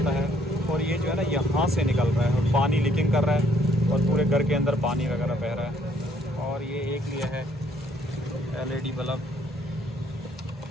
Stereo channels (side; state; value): both; normal; correlation 0.65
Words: है और ये जो है ना यहाँ से निकल रहा है और पानी लीकिंग कर रहा है और पूरे घर के अंदर पानी वगैरह बह रहा है। और ये एक लिया है LED बल्ब,